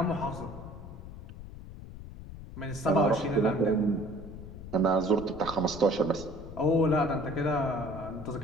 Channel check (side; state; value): left; noise; rumble, 13 dB below the sound